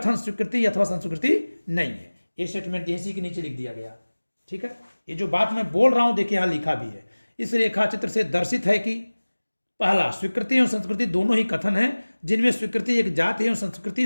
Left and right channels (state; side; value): inverted; both; correlation -1.00